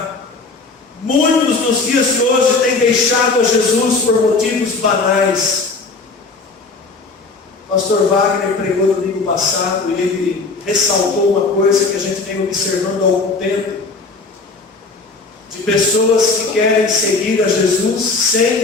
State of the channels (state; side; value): quieter; right; 3.9 dB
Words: Muitos nos dias de hoje têm deixado a Jesus por motivos banais. O pastor Wagner pregou no domingo passado e ele ressaltou uma coisa que a gente vem observando há algum tempo. de pessoas que querem seguir a Jesus sem